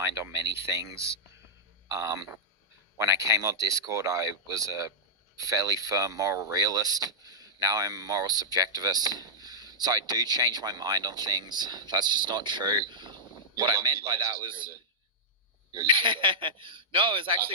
on many things. When I came on Discord, I was a fairly firm moral realist. Now I'm a moral subjectivist. So I do change my mind on things. That's just not true. What I meant by that was... No, it was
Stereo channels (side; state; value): both; normal; correlation -0.10